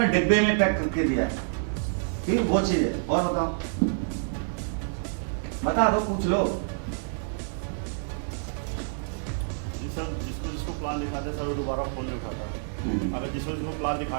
डिब्बे में पैक करके दिया है, ठीक वो चीज है। और बताओ, बता दो, पूछ लो। सर जिसको प्लान दिखाते सर वो दोबारा फोन नहीं करता है। अगर जिसको प्लान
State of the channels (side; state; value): left; silent; digital silence